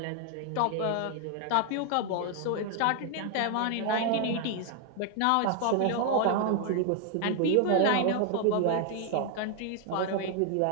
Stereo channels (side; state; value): both; different; correlation 0.00